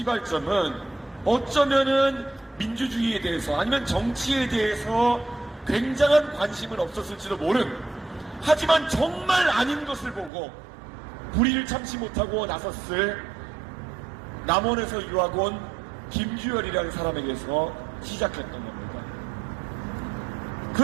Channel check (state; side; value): drops out; left; at 10.3 s